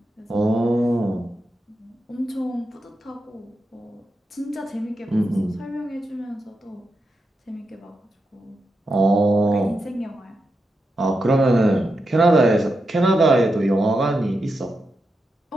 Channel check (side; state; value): both; normal; correlation 0.87